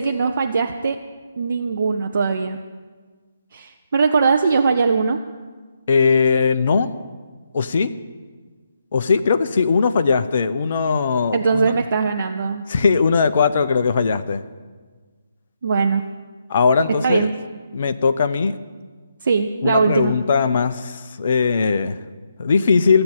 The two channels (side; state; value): both; inverted; correlation -0.79